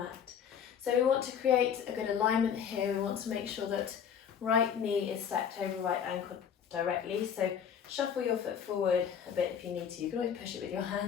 So we want to create a good alignment here. We want to make sure that right knee is stacked over right ankle directly. So shuffle your foot forward a bit if you need to. You can always push it with your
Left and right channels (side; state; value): right; quieter; 8.0 dB